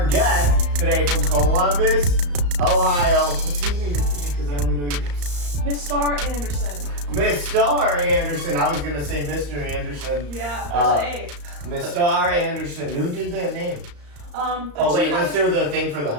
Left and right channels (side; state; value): left; late; 34 ms